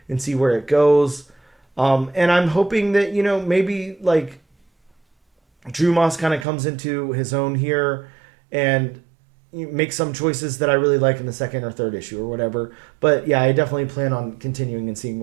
and see where it goes. And I'm hoping that, maybe like Drew Moss kind of comes into his own here and make some choices that I really like in the second or third issue or whatever. But yeah, I definitely plan on continuing and seeing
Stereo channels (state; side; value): drops out; left; at 6.5 s